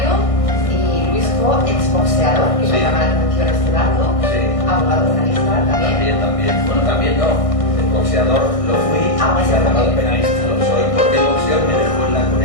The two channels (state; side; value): late; right; 1.6 ms